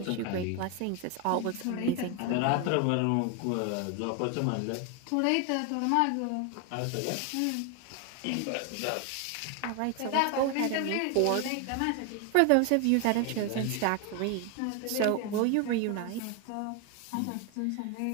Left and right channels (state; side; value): different; both; correlation 0.01